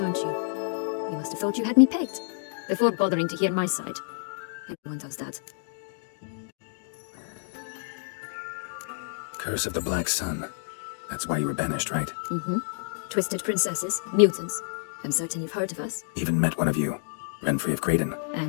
aren't you? You must have thought you had me pegged, before bothering to hear my side. Everyone does that. Curse of the Black Sun. That's why you were banished, right? Twisted princesses, mutants. I'm certain you've heard of us. Even met one of you. Renfrey of Creighton.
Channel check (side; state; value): right; silent; digital silence